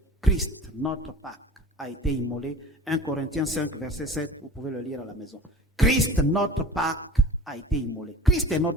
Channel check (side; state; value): both; normal; correlation 0.41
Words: Christ, notre Pâque, a été immolé. 1 Corinthiens 5, verset 7, vous pouvez le lire à la maison. Christ, notre Pâque, a été immolé. Christ est